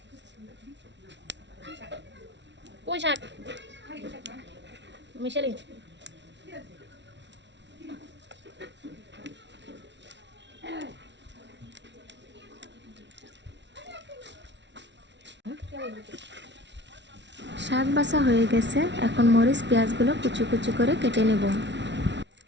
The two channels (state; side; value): late; left; 0.51 ms